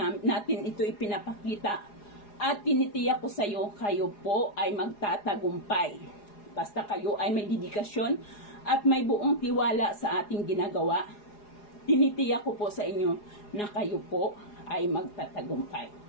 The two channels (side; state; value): right; late; 4.8 ms